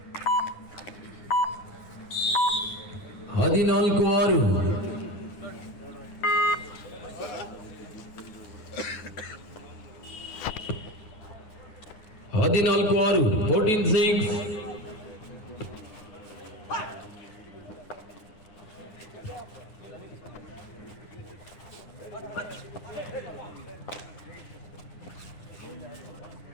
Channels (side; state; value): right; late; 9.9 ms